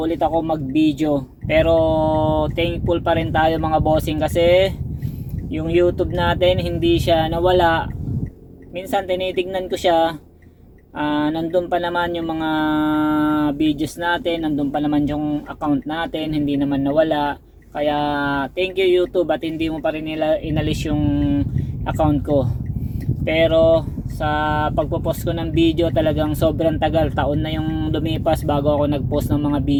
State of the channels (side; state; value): both; identical; correlation 1.00